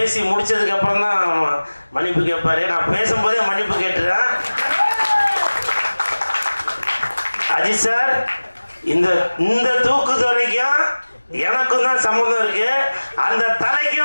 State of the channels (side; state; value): both; inverted; correlation -1.00